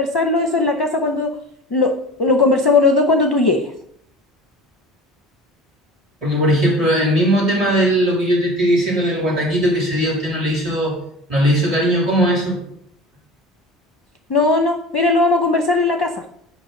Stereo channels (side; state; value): both; normal; correlation 0.38